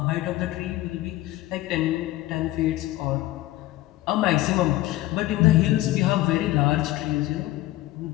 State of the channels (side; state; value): right; quieter; 16.7 dB